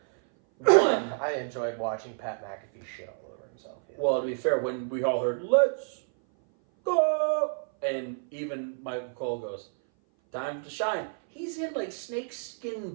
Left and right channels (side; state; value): left; silent; 57 dB below the other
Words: One, I enjoyed watching Pat McAfee shit all over himself. Yeah. Well, to be fair, when we all heard "Let's go," and even Michael Cole goes, "Time to shine." He's in